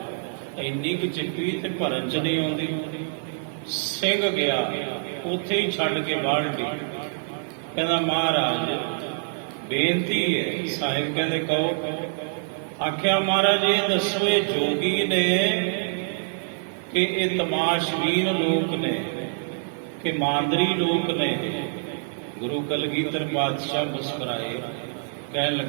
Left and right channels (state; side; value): silent; left; 61 dB below the other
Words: ਇੰਨੀ ਕੁ ਚਿੱਪੀ ਤੇ ਭਰਨ ਚ ਨਹੀਂ ਆਉਂਦੀ। ਸਿੰਘ ਗਿਆ, ਉੱਥੇ ਹੀ ਛੱਡ ਕੇ ਬਾਲਟੀ, ਕਹਿੰਦਾ ਮਹਾਰਾਜ ਬੇਨਤੀ ਹੈ। ਸਾਹਿਬ ਕਹਿੰਦੇ ਕਹੋ। ਆਖਿਆ ਮਹਾਰਾਜ ਇਹ ਦੱਸੋ, ਇਹ ਜੋਗੀ ਨੇ ਕਿ ਇਹ ਤਮਾਸ਼ਬੀਨ ਲੋਕ ਨੇ ਕਿ ਮਾਂਦਰੀ ਲੋਕ ਨੇ? ਗੁਰੂ ਕਲਗੀਧਰ ਪਾਤਸ਼ਾਹ ਮੁਸਕਰਾਏ, ਕਹਿਣ